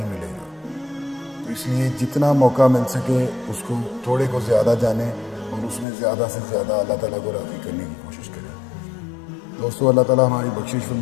ملے گا، تو اس لیے جتنا موقع مل سکے اس کو تھوڑے کو زیادہ جانیں اور اس میں زیادہ سے زیادہ اللہ تعالیٰ کو راضی کرنے کی کوشش کریں۔ دوستو، اللہ تعالیٰ ہماری بخشش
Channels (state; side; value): drops out; right; at 5.9 s